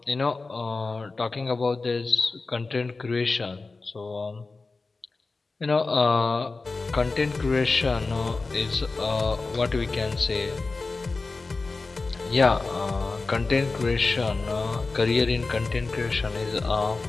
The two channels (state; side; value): quieter; right; 3.8 dB